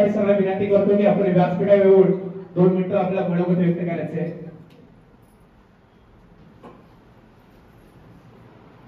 सरांना विनंती करतो की आपण व्यासपीठावर येऊन 2 मिनिटं आपला मनोगत व्यक्त करायचे आहे.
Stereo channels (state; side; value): identical; both; correlation 1.00